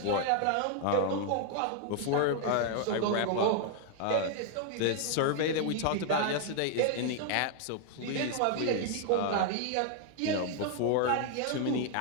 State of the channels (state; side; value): different; both; correlation 0.00